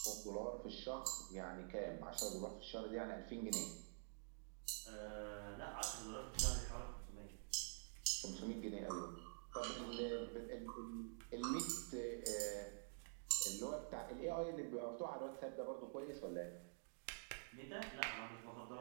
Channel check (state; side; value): silent; left; digital silence